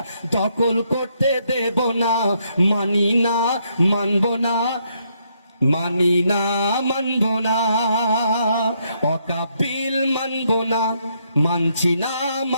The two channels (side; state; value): both; inverted; correlation -0.74